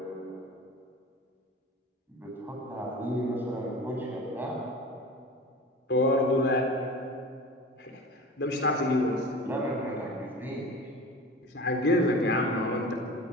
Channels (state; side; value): normal; both; correlation 0.35